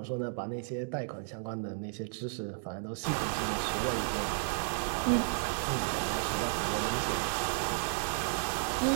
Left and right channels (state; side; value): silent; left; digital silence